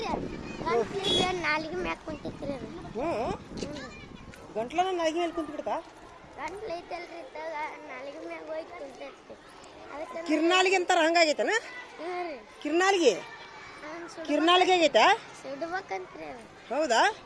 ಗಂಟ್ಲಿಗೆ ನಾಲಿಗೆ ಮ್ಯಾಕ್ ಕುಂತಿತ್ರಿ ಅದು. ಗಂಟ್ಲನ ನಾಲ್ಗೆ ಮೇಲೆ ಕುಂತು ಬಿಡ್ತಾ? ಗಂಟ್ಲು ಐತಲ್ರಿ, ನಾಲಿಗೆ ಮ್ಯಾಗ ಹೋಗಿ ಕುಂತೈತಿ. ಅದಕ್ಕೆ ಕಿರ್ನಾಲಿಗೆ ಅಂತಾರ, ಹಂಗಾಗೈತನ? ರೀ ಕಿರ್ನಾಲಿಗೆ ಕಿರ್ನಾಲಿಗೆ ಆಗೈತಾ? ಸುಡ್ಬೇಕಂತ್ರಿ ಅದು. ಹೌದಾ?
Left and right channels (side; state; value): both; identical; correlation 1.00